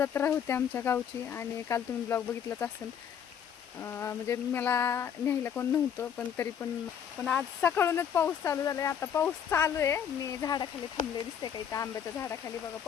होती आमच्या गावची आणि काल तुम्ही ब्लॉग बघितलाच असेल. म्हणजे मला न्यायला कोण नव्हतं, पण तरी पण आज सकाळूनच पाऊस चालू झाला आहे. आता पाऊस चालू आहे. मी झाडाखाली थांबले, दिसते का इथं आंब्याच्या झाडाखाली. बघा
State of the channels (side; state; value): right; quieter; 8.4 dB